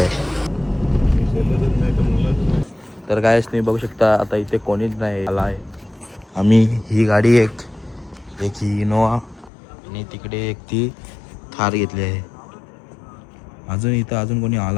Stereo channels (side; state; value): right; drops out; at 9.5 s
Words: तर काय तुम्ही बघू शकता आता इथे कोणीच नाही आला आहे. आम्ही ही गाडी एक ही इनोवा आणि तिकडे एक ती थार घेतली आहे. अजून कोणी